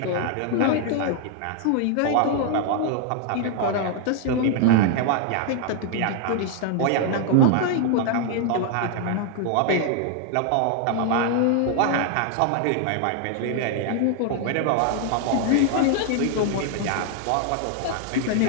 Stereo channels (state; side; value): different; both; correlation 0.00